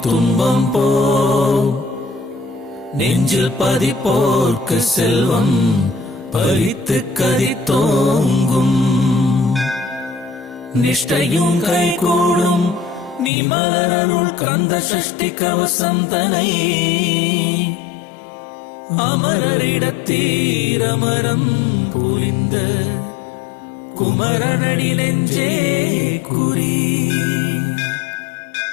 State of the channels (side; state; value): right; drops out; at 13.3 s